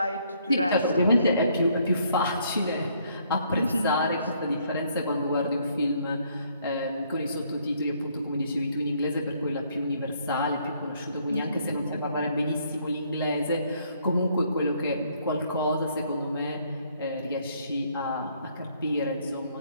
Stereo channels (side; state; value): both; inverted; correlation -0.67